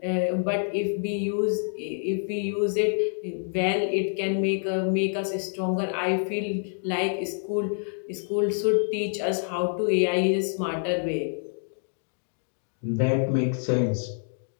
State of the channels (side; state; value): right; silent; digital silence